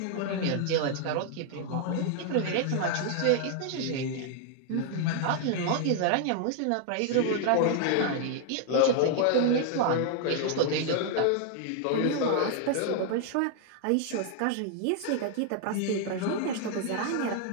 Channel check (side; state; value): both; different; correlation 0.00